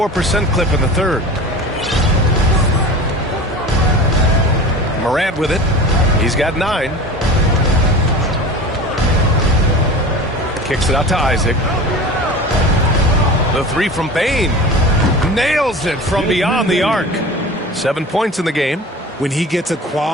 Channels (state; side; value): normal; both; correlation 0.35